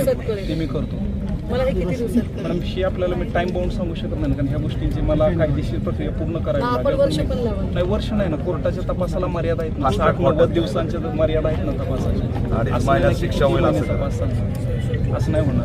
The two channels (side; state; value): both; identical; correlation 1.00